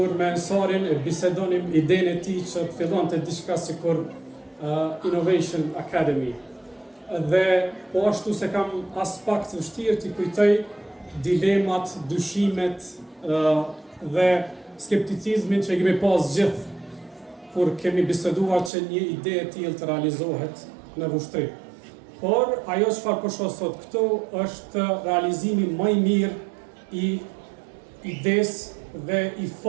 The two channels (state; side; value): drops out; left; at 18.7 s